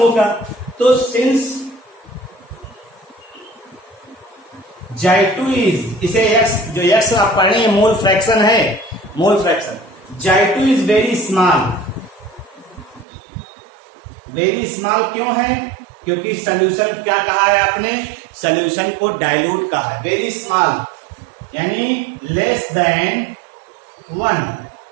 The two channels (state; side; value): drops out; left; at 13.1 s